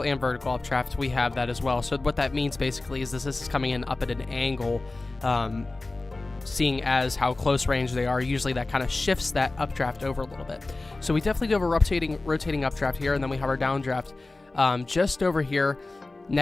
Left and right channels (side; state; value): right; quieter; 3.2 dB